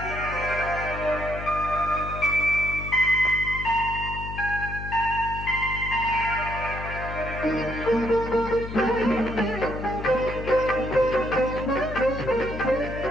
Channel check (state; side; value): noise; left; hum, 8 dB below the sound